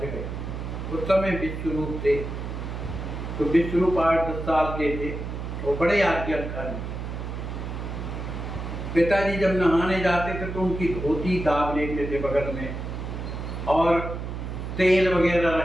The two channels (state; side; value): noise; right; hum, 6 dB below the sound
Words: गए। उस समय विश्वरूप थे, तो विश्वरूप 8-10 साल के थे, वो बड़े आज्ञाकारी। पिताजी जब नहाने जाते थे तो उनकी धोती दाब लेते थे बगल में और तेल वगैरह